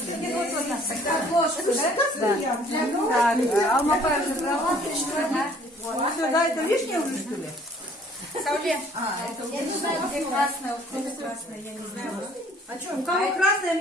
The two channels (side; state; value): both; normal; correlation 0.56